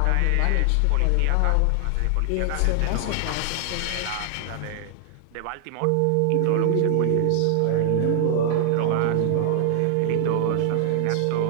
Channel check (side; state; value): both; different; correlation 0.00